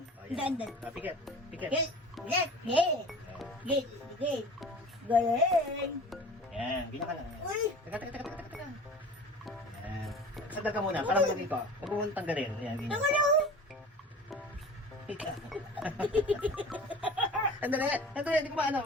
ayan. Dan. Pikit. Pikit. Get. Get. Galing. Ayan. Ganyan ka lang. Uy. Teka. Ayan. Sagdag ka muna. Para malagay ko. Huwag mo mong tanggalin. Ayan. Ganyan. Ano? Ika. Andali, hindi ko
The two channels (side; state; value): both; normal; correlation 0.40